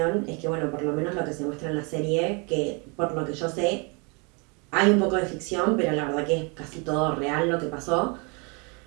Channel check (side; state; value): left; quieter; 31.9 dB